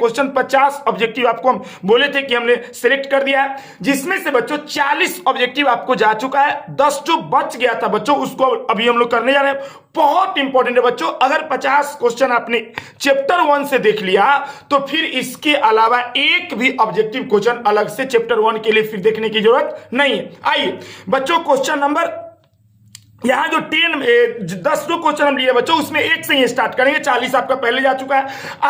50 objective आपको हम बोले थे कि हमने सिलेक्ट कर दिया है, जिसमें से बच्चों 40 ऑब्जेक्टिव आपको जा चुका है। 10 जो बच गया था बच्चों, उसको अभी हम लोग करने जा रहे हैं। बहुत इंपॉर्टेंट है बच्चों, अगर 50 क्वेश्चन आपने चैप्टर 1 से देख लिया तो फिर इसके अलावा एक भी ऑब्जेक्टिव क्वेश्चन अलग से चैप्टर 1 के लिए फिर देखने की जरूरत नहीं है। आइए बच्चों, क्वेश्चन नंबर यहां जो 10 जो क्वेश्चन हम लिए बच्चों, उसमें एक से ही स्टार्ट करेंगे। 40 आपका पहले जा चुका है,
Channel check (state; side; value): identical; both; correlation 1.00